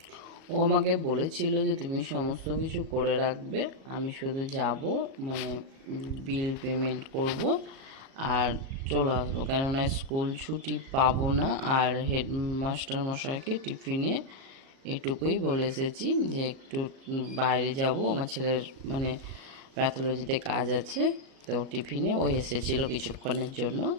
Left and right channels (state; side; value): late; left; 37 ms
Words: ও আমাকে বলেছিল যে তুমি সমস্ত কিছু করে রাখবে, আমি শুধু যাব, মানে বিল পেমেন্ট করব আর চলে আসবো, কেননা স্কুল ছুটি পাবো না। আর হেডমাস্টার মশাইকে টিফিনে এটুকুই বলে এসেছি যে একটু বাইরে যাব, আমার ছেলের মানে প্যাথোলজিতে কাজ আছে, তো টিফিনে ও এসেছিলো কিছুক্ষণের জন্য,